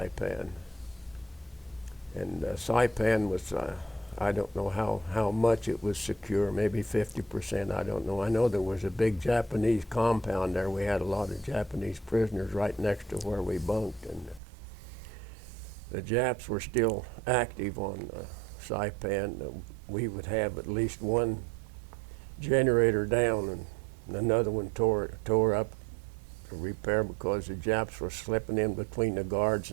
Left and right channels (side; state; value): left; drops out; at 14.4 s